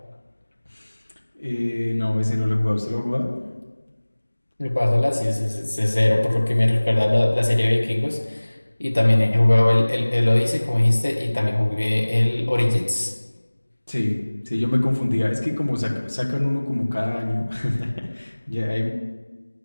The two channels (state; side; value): inverted; both; correlation -1.00